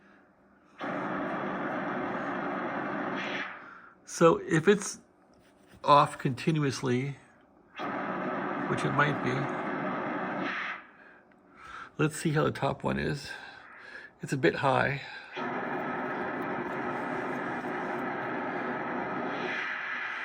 So if it's off continuously, which it might be, let's see how the top one is. It's a bit high.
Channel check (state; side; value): identical; both; correlation 1.00